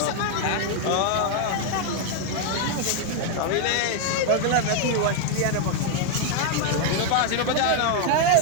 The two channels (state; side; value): different; both; correlation 0.00